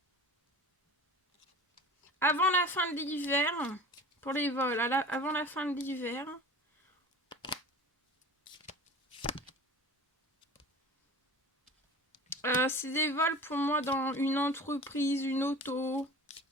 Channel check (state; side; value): normal; both; correlation 0.38